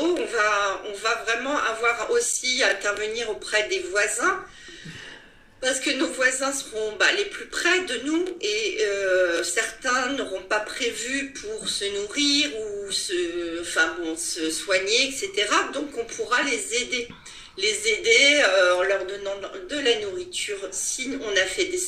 On va vraiment avoir aussi à intervenir auprès des voisins parce que nos voisins seront les plus près de nous et certains n'auront pas prévu pour se nourrir ou se soigner, etc. Donc on pourra les aider en leur donnant de la nourriture si on a fait des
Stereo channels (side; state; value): both; identical; correlation 1.00